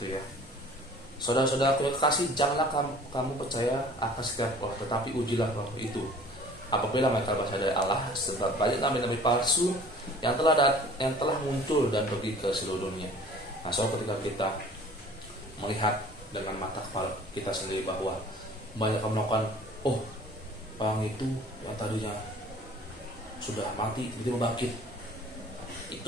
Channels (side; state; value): both; normal; correlation 0.49